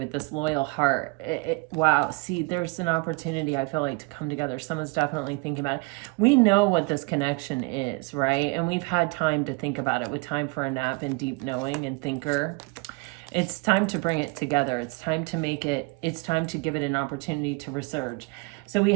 this loyal heart. Wow, see, there's an opportunity, I feel like, to come together. Someone's definitely thinking about it. We know what this connection is, right? And we've had time to think about it, with time for a nap and deep knowing and thinker. It's time to bring it together. It's time to give it an opportunity to resurge. So we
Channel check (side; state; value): left; quieter; 27.7 dB